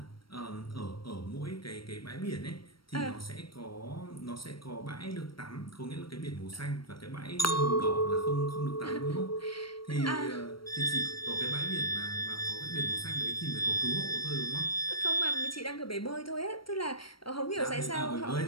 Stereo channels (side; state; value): right; late; 0.74 ms